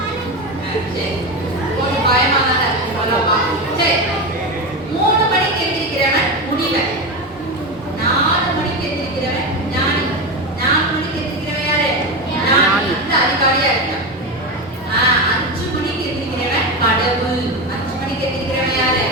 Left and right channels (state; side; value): normal; both; correlation 0.18